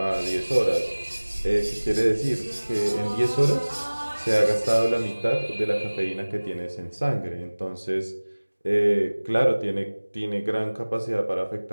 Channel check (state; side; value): inverted; both; correlation -1.00